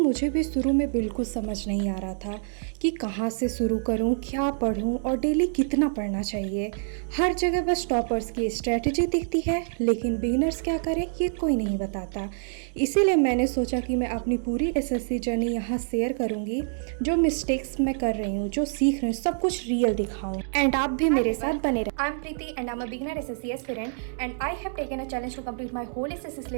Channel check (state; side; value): silent; left; digital silence